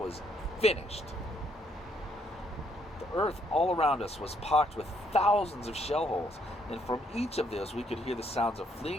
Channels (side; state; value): both; normal; correlation 0.71